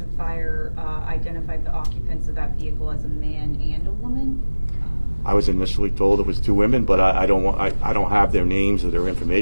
and Fire identified the occupants of that vehicle as a man and a woman. I was initially told it was 2 women, but I don't have their names or their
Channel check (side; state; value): both; inverted; correlation -1.00